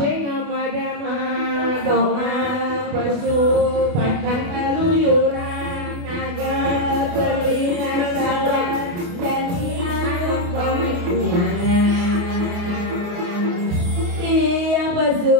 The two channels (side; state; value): left; late; 28 ms